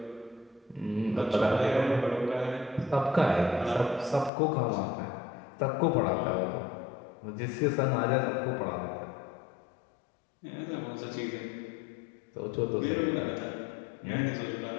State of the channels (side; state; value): right; drops out; at 4.3 s